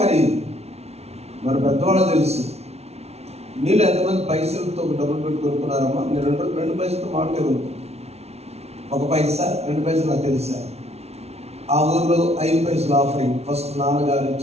మరి పెద్దవాళ్ళు తెలుసు. మీరు ఎంతమంది పైసలతో డబ్బులు పెట్టి కొనుక్కున్నారమ్మా? మీరు 2 పైసలతో మామిడికాయ కొనుక్కుంటారు. 1 పైసా 2 పైసలు నాకు తెలుసా. ఆ ఊర్లో 5 పైసలు ఆఫరింగ్. ఫస్ట్ నాన్నగారు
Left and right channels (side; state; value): left; late; 0.31 ms